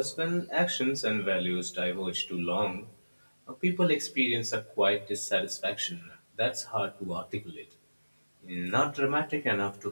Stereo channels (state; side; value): inverted; both; correlation -1.00